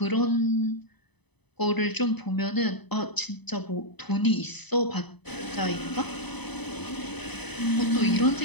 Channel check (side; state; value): right; late; 0.99 ms